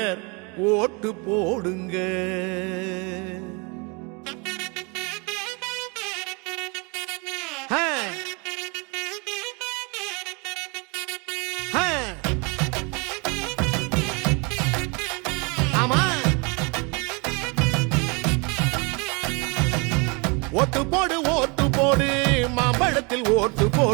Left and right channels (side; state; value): left; quieter; 31.1 dB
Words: ஓட்டு போடுங்க. ஓட்டு போடு ஓட்டு போடு மாம்பழத்தில் ஓட்டு